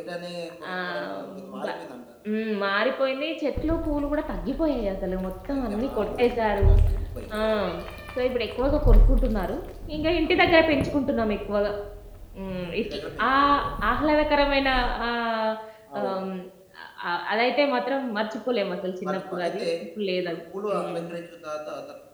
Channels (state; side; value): identical; both; correlation 1.00